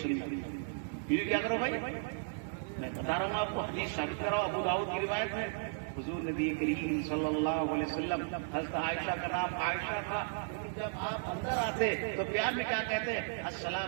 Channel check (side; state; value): left; silent; 55 dB below the other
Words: بیوی کیا کرو بھائی, میں بتا رہا ہوں آپ کو, حدیث ثابت کراؤ. ابو داؤد کی روایت ہے حضور نبی کریم صلی اللہ علیہ وسلم, حضرت عائشہ کا نام عائشہ تھا, جب آپ اندر آتے تو پیار میں کیا کہتے ہیں؟